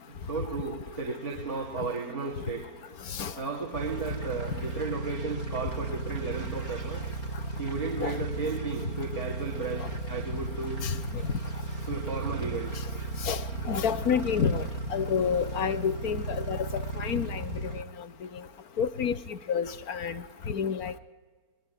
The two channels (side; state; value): right; late; 4.4 ms